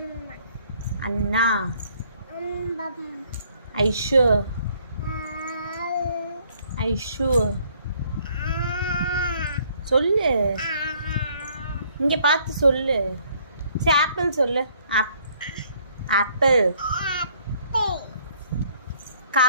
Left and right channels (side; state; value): both; inverted; correlation -0.63